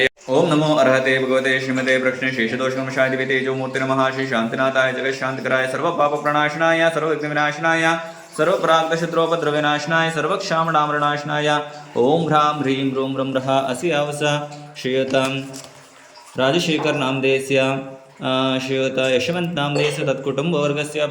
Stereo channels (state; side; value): identical; both; correlation 1.00